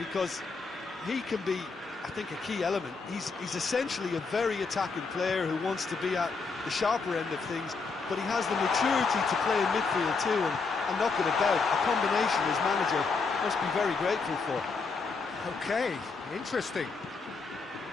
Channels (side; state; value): right; quieter; 4.5 dB